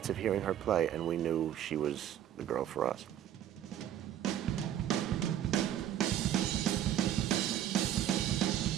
of hearing her play, and we knew she was the girl for us.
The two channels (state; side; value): quieter; left; 11.0 dB